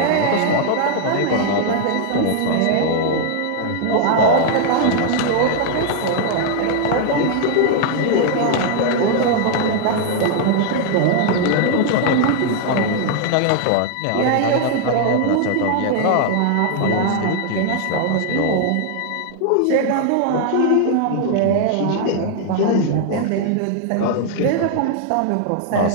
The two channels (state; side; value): different; both; correlation 0.00